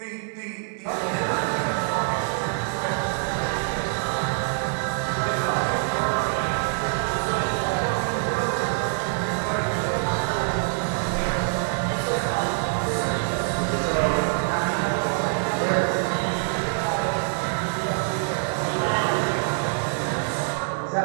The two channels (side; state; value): left; silent; 62 dB below the other